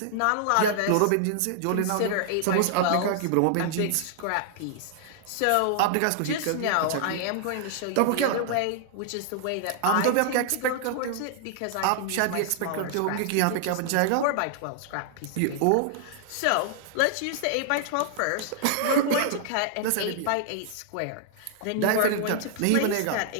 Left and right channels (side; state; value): both; different; correlation -0.01